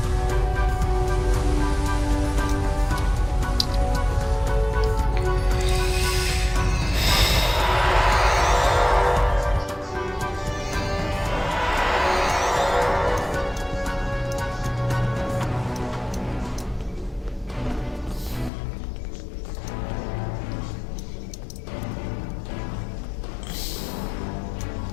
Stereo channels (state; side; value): drops out; right; at 18.5 s